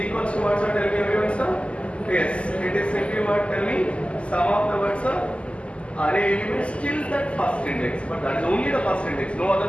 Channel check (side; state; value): right; late; 0.057 ms